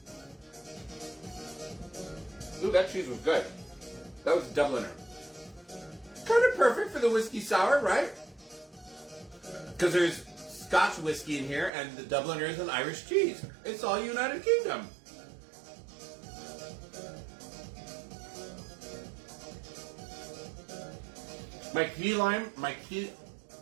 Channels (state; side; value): drops out; left; at 11.7 s